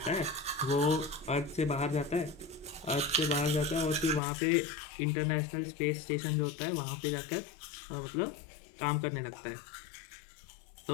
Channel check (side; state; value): right; drops out; at 4.2 s